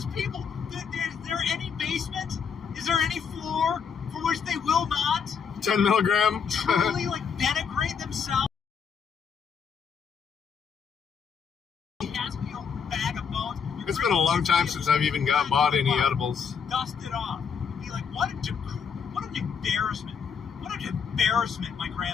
people? Is there any basement? Is there any floor for which they will not 10 milligram. truly, like, denigrate themselves? Bag of bones. It's been a long time since I've even bought any edibles. Dust it off. Be like, what an embarrassment. What an embarrassment, my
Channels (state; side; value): quieter; right; 6.5 dB